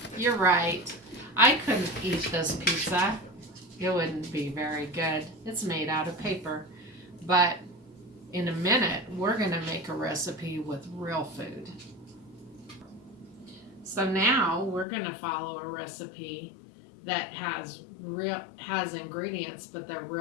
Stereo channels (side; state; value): right; drops out; at 14.9 s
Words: You're right. I couldn't eat this pizza. It wouldn't be very good. It's made out of paper. But in a minute, we're going to make a recipe with real food. So now we're going to follow a recipe that has ingredients, but they're